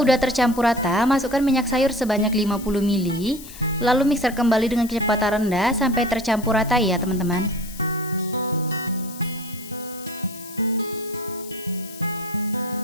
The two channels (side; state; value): left; noise; hiss, 16 dB below the sound